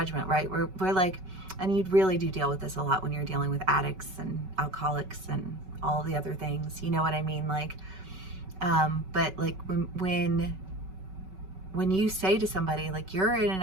right? We're like, and you really do deal with this a lot when you're dealing with addicts and alcoholics and all the other things. You know what I mean? Like, But like when you say to somebody, like, you're in an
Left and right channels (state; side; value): late; left; 5.3 ms